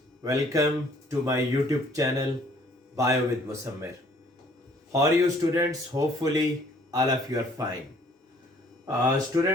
welcome to my YouTube channel bio with Musammir. How are you students? Hopefully all of you are fine.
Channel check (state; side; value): normal; both; correlation 0.59